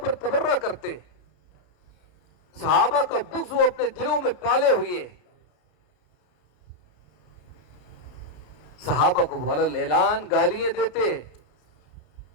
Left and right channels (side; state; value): right; late; 33 ms